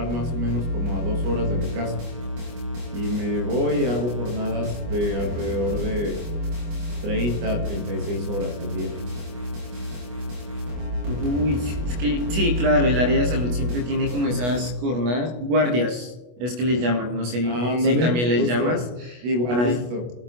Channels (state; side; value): late; left; 25 ms